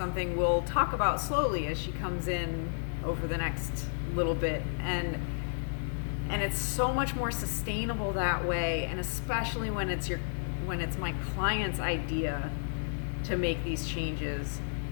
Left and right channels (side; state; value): right; silent; digital silence